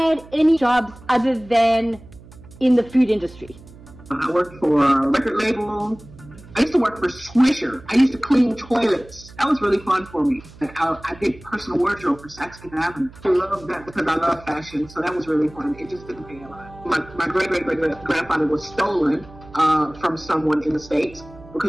any jobs other than in the food industry? I worked for a record label. I used to work for Swisher. I used to clean toilets. That was really fun for me. I did personal wardrobe for Saks Fifth Avenue. I love that because I love fashion, so that was really fun. It just didn't pay a lot. My great-great-great-grandfather was stolen from someone in the States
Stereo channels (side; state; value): right; noise; hum, 20 dB below the sound